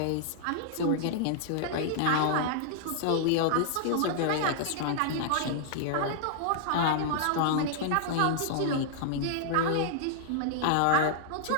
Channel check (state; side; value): different; both; correlation -0.01